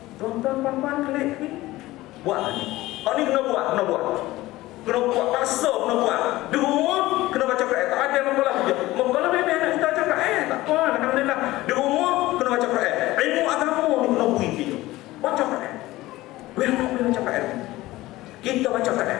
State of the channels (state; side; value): quieter; right; 17.8 dB